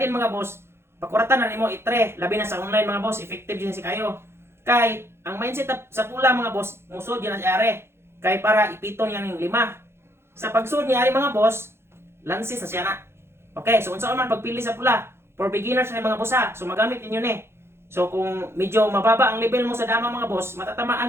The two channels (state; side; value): late; left; 0.12 ms